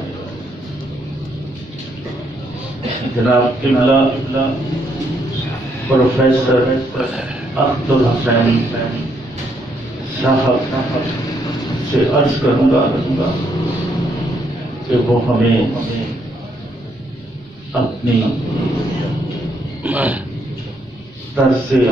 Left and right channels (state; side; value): normal; both; correlation 0.73